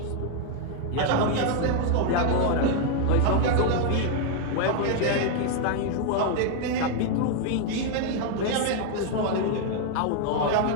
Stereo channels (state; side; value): different; both; correlation 0.00